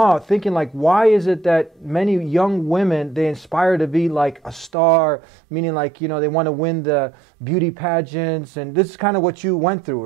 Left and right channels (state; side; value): drops out; left; at 4.7 s